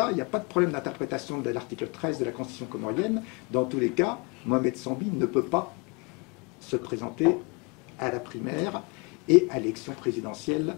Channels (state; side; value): quieter; right; 30.4 dB